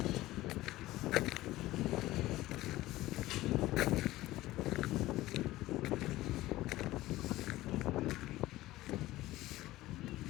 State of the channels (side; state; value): right; quieter; 16.9 dB